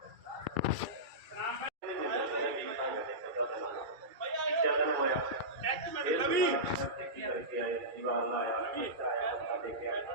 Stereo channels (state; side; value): late; left; 2.3 ms